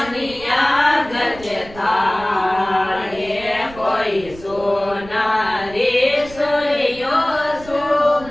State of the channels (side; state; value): right; noise; rumble, 18 dB below the sound